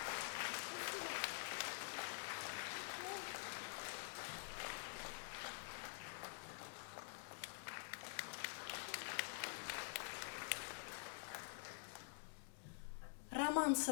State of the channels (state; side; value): silent; right; digital silence